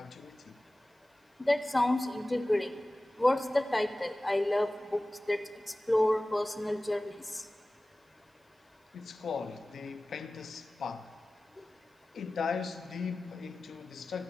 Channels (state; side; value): normal; both; correlation 0.97